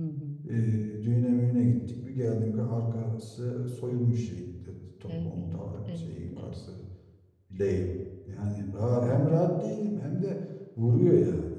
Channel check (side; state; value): both; identical; correlation 1.00